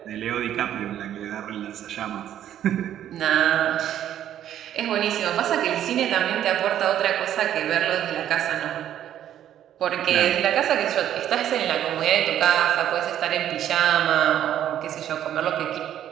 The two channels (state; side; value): quieter; left; 11.0 dB